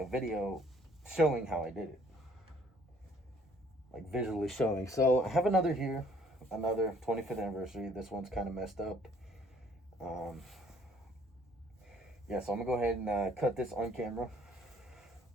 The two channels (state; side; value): normal; both; correlation 0.60